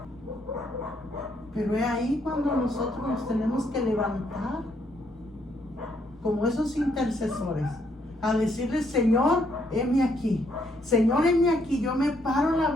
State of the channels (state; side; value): normal; both; correlation 0.72